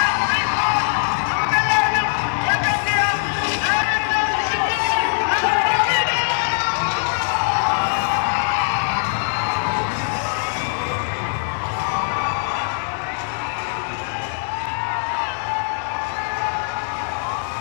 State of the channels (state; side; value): silent; right; digital silence